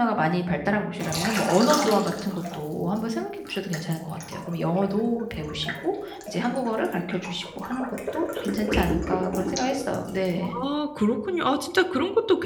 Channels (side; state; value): both; identical; correlation 1.00